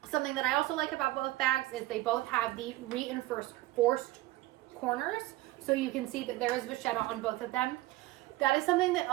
Something that I also like about both bags is they both have the reinforced corners. So you can see that there is vachetta on both of them. That is something that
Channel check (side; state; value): left; quieter; 17.8 dB